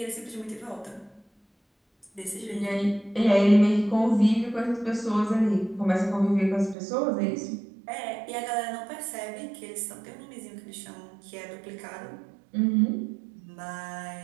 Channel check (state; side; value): drops out; left; at 6.8 s